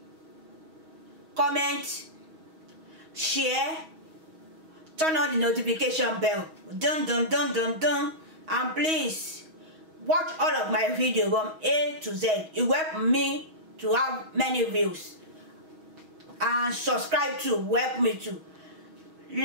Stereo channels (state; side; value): late; left; 6.3 ms